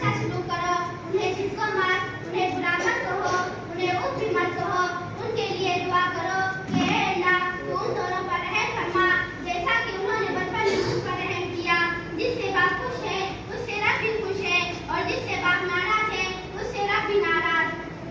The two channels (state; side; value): identical; both; correlation 1.00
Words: अच्छा सलूक करो, उन्हें झिटको मत, उन्हें बुरा मत कहो, उन्हें उफ भी मत कहो। उनके लिए दुआ करो कि हे अल्लाह तू उन दोनों पर रहम फरमा जैसा कि उन्होंने बचपन में मुझ पर रहम किया। जिससे बाप खुश है उससे रब भी खुश है और जिससे बाप नाराज है उससे रब भी नाराज।